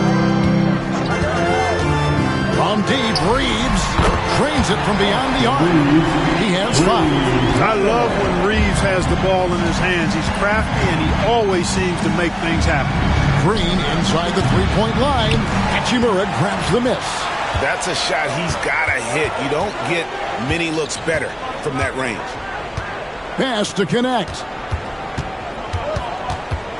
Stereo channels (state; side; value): identical; both; correlation 1.00